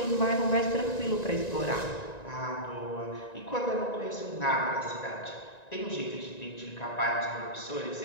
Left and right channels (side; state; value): right; late; 1.9 ms